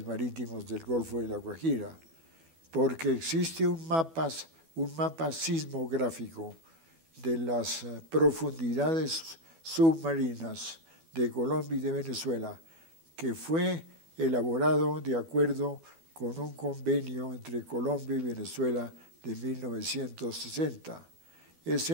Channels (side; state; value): left; late; 12 ms